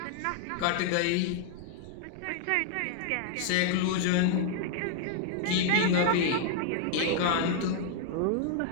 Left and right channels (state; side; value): different; both; correlation 0.00